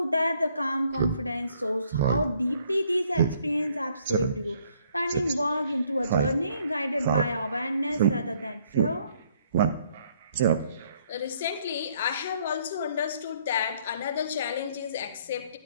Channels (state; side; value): inverted; both; correlation -0.66